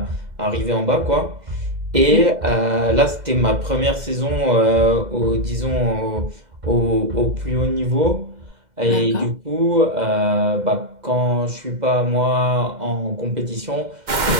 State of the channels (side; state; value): left; late; 2.0 ms